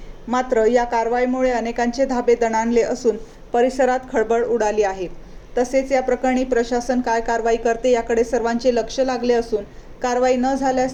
मात्र या कारवाईमुळे अनेकांचे धाबे दणाणले असून परिसरात खळबळ उडाली आहे। तसेच या प्रकरणी प्रशासन काय कारवाई करते याकडे सर्वांचे लक्ष लागले असून कारवाई न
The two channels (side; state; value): both; identical; correlation 1.00